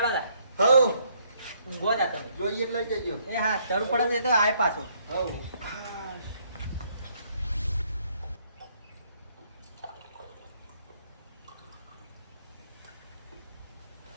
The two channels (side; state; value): both; inverted; correlation -0.68